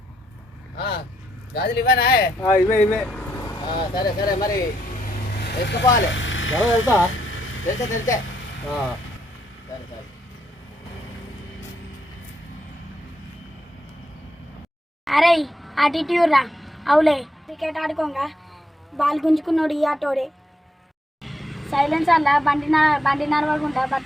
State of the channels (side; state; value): both; normal; correlation 0.78